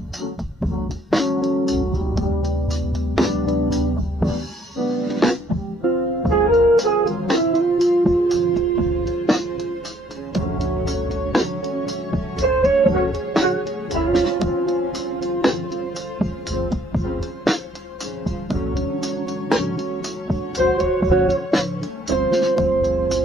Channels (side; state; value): both; normal; correlation 0.66